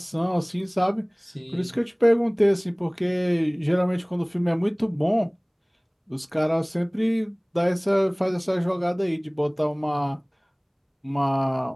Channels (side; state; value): both; identical; correlation 1.00